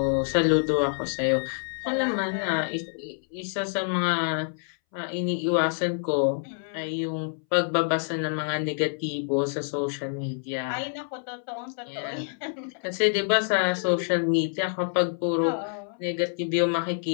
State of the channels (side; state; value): right; silent; 60 dB below the other